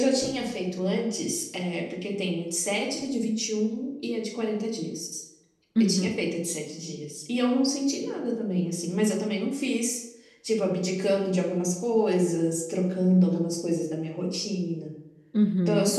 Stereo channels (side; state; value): both; identical; correlation 1.00